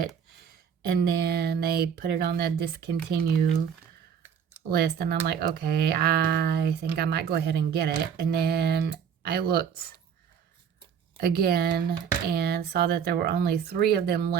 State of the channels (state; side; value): quieter; left; 7.6 dB